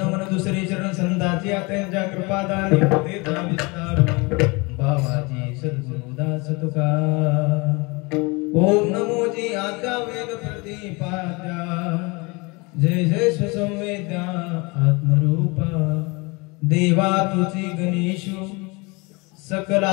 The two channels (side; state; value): right; quieter; 27.2 dB